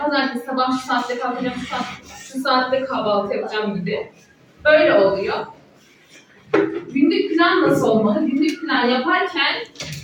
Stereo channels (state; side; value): identical; both; correlation 1.00